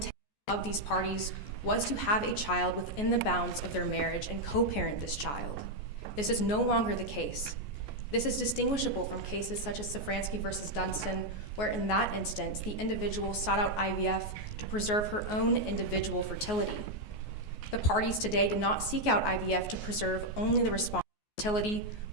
of these parties was to have a child within the bounds of their marriage and co-parent this child. This is no longer the case. This is distinguishable from cases such as Safransky versus Dunstan, where in that instance, the individual sought out IVF to preserve her own individual fertility. The parties today did not seek out IVF to preserve only the respondent's fertility,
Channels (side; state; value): right; late; 14 ms